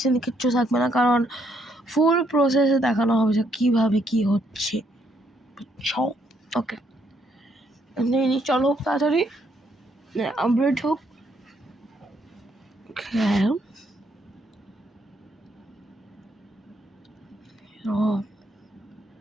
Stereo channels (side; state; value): both; normal; correlation 0.72